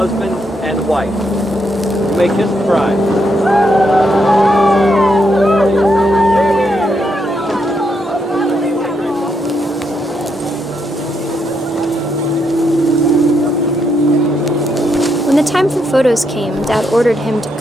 and wife. You may kiss the bride. When the time for photos came, Dad ordered him to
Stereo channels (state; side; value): normal; both; correlation 0.78